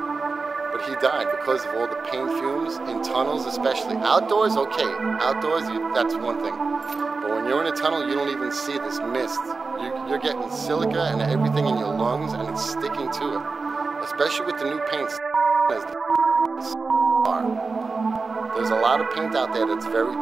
But he died because of all the paint fumes in tunnels, especially. Outdoors, okay. Outdoors, that's one thing. But when you're in a tunnel, you don't even see this mist. You're getting silica and everything in your lungs, and it's sticking to it. Especially with the new paints. There's a lot of paint out there that's very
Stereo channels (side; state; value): left; quieter; 4.2 dB